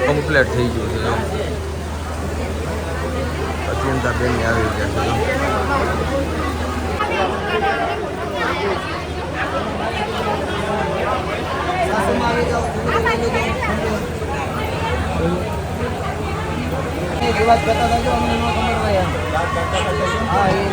કમ્પ્લીટ થઈ ગયું છે. અત્યંતા બેન આવી ગયા છે. વાત કરતા હતા અમને ન ખબર હોય. હા એ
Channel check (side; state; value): both; identical; correlation 1.00